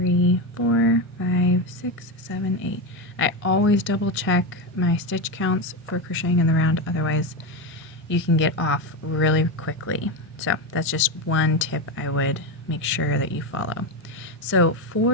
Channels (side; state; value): both; normal; correlation 0.13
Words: 4, 5, 6, 7, 8. I always double check my stitch counts for crocheting in the round, otherwise you can get off really quickly. So that's just one tip I would make sure that you follow. So